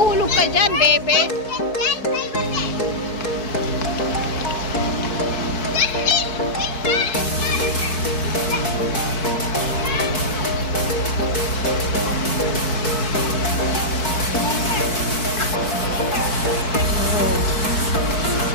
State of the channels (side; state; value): right; late; 4.6 ms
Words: ka dyan, bebe.